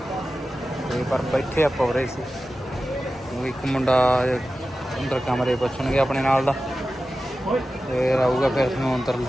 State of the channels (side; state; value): both; normal; correlation 0.94